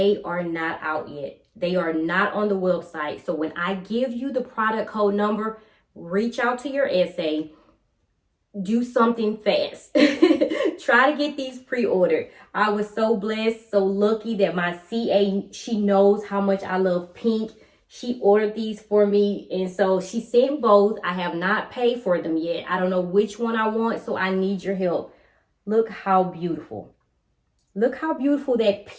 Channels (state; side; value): identical; both; correlation 1.00